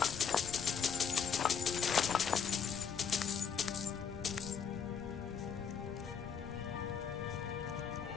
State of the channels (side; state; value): right; quieter; 6.9 dB